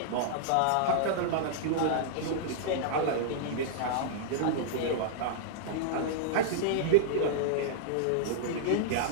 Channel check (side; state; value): both; different; correlation -0.02